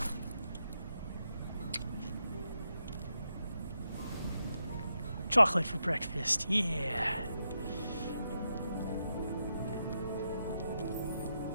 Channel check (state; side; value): inverted; both; correlation -0.84